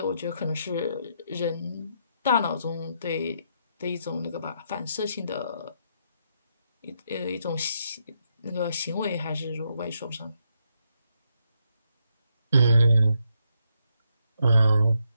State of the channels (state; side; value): inverted; both; correlation -0.78